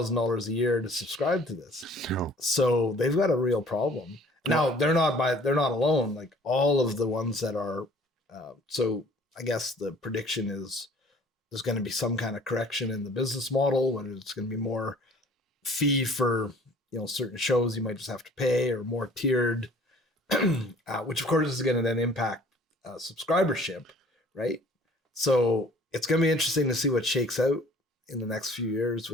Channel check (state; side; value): normal; both; correlation 0.53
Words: a year to subscribe to this. No. So they've got a real problem. Now, they're not alone. Like all of the ones that are, so I guess the prediction is there's going to be some kind of correction in the business model, whether it's going to be more fee for, certain shows you might just have to pay, or more tiered, which of course is going to then impact subscribership, right? So it's going to be interesting to see what shakes out in the next few years